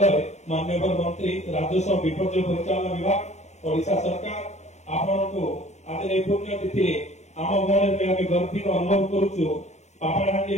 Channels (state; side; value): late; right; 0.33 ms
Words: माननीय मंत्री राजस्व विपर्य परिचालन विभाग ओडिशा सरकार आपण को आज ए पुण्यतिथि आम गणे गर्वित अनुभव करुचु। पापड़ाहांडी